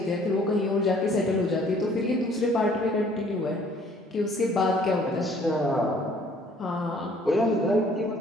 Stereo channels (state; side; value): normal; both; correlation 0.58